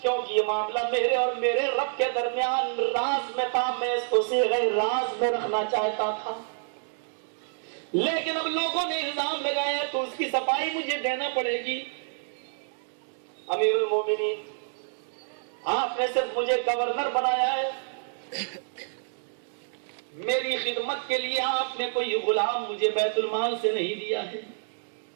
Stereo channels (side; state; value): left; silent; digital silence